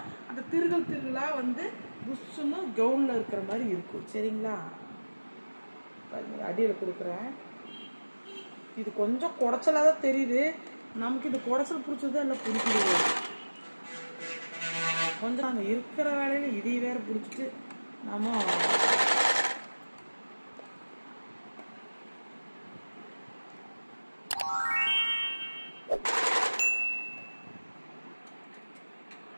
அந்த திருகலாக வந்து புஷ்ஷுன்னு கவுனில் இருக்கிற மாதிரி இருக்கும். சரிங்களா? அடியில் கொடுக்குறேன். இது கொஞ்சம் குடைச்சலாக தான் தெரியுது நமக்கு. இது குடைச்சல் பிடிச்சதா இல்லை பிடிக்குது கொஞ்சம். நாங்கள் இருக்கிற வேலையில் இதை வேற பிடிச்சிட்டு நம்ம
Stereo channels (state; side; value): inverted; both; correlation -1.00